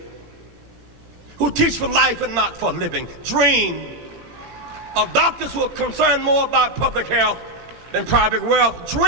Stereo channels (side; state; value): left; late; 18 ms